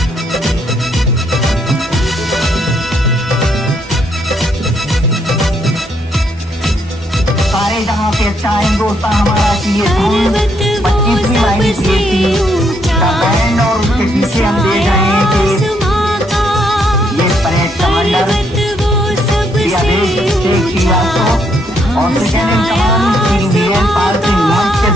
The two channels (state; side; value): normal; both; correlation 0.73